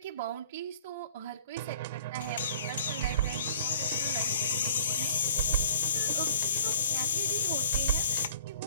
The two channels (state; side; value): inverted; both; correlation -0.50